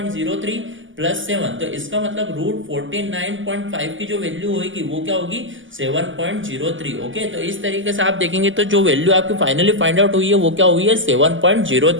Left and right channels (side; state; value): left; late; 0.57 ms